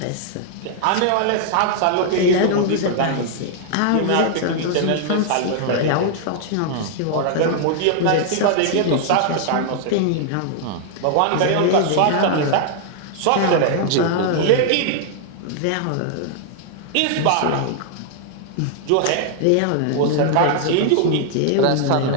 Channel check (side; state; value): both; different; correlation 0.00